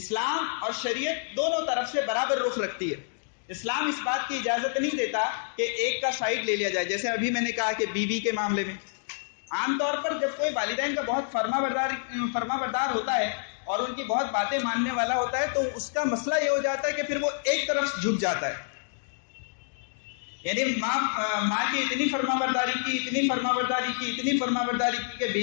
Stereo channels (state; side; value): silent; right; digital silence